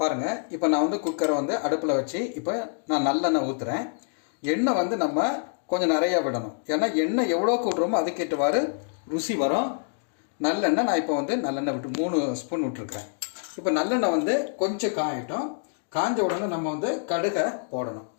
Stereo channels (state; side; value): silent; right; digital silence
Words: பாருங்கள், இப்போ நான் வந்து குக்கரை வந்து அடுப்பில் வச்சு இப்போ நான் நல்லெண்ணெய் ஊற்றுறேன். எண்ணெய் வந்து நம்ம கொஞ்சம் நிறையா விடணும். ஏன்னா எண்ணெய் எவ்வளோ கூட்டுறோமோ அதுக்கேற்றவாறு ருசி வரும். நல்லெண்ணெய் நான் இப்போ வந்து நல்லெண்ணெய் விட்டு 3 ஸ்பூன் விட்டுருக்குறேன். இப்போ நல்லெண்ணெய் வந்து கொஞ்சம் காயட்டும். காஞ்ச உடனே நம்ம வந்து கடுகை போடணும்.